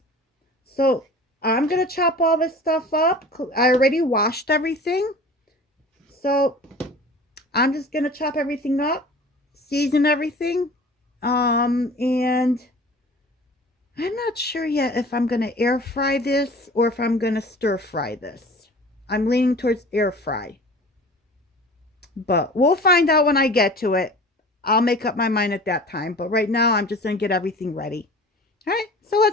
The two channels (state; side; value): normal; both; correlation 0.42